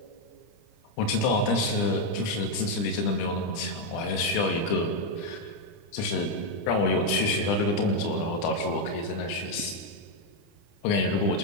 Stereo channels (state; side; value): late; right; 30 ms